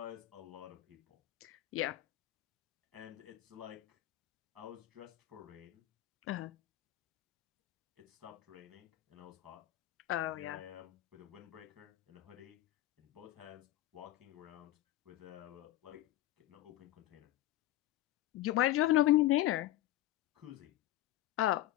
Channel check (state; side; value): quieter; right; 15.1 dB